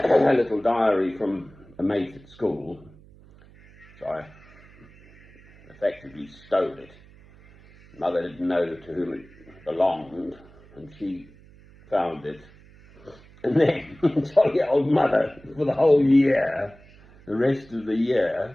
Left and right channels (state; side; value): noise; right; hum, 24 dB below the sound